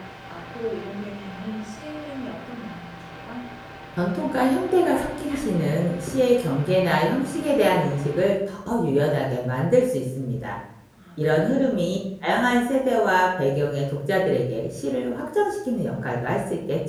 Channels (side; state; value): both; identical; correlation 1.00